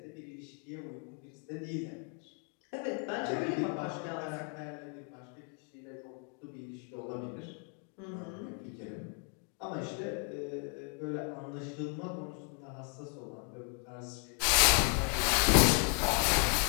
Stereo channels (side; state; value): right; quieter; 37.5 dB